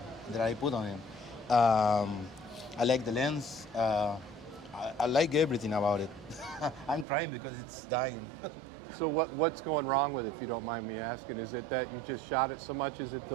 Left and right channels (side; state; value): left; drops out; at 7.1 s